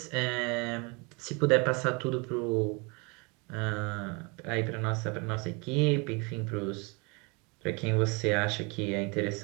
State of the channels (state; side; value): quieter; left; 30.0 dB